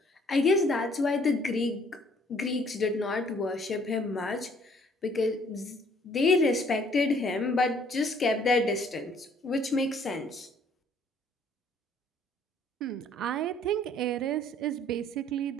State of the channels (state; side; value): normal; both; correlation 0.61